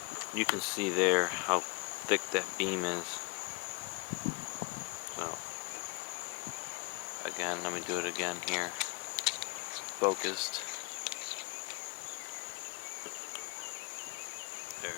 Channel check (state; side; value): quieter; right; 25.1 dB